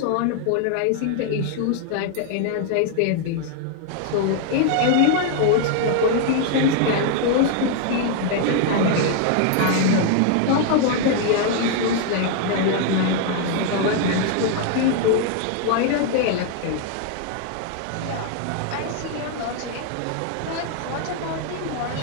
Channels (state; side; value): different; both; correlation 0.00